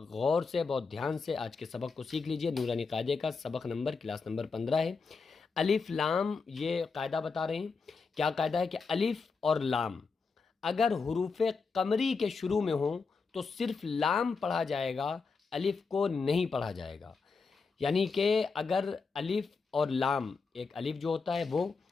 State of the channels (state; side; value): quieter; right; 4.8 dB